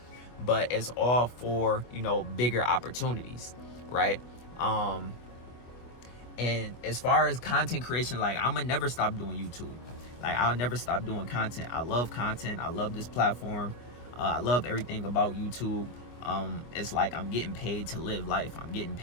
But it's all for, you know, bigger opportunities, right? And as far as content creation, like, I'm gonna never stop doing YouTube. Like, I'll never stop doing content. I love content. I love this platform. I love everything about YouTube. It's like I'm getting paid to live life. I'm getting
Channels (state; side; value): late; right; 25 ms